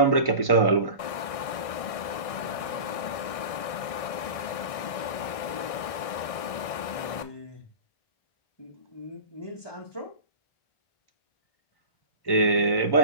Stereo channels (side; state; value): right; late; 1.6 ms